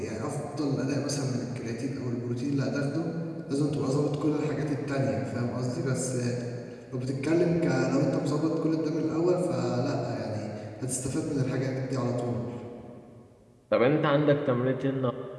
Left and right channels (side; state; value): both; identical; correlation 1.00